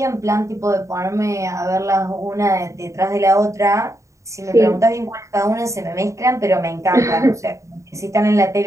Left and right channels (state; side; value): late; left; 0.15 ms